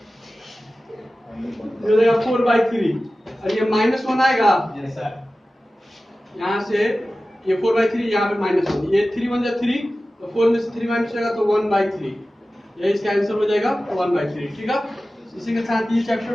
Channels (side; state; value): both; normal; correlation 0.95